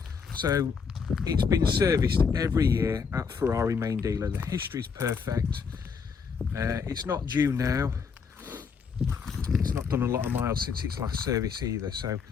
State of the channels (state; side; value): quieter; right; 5.8 dB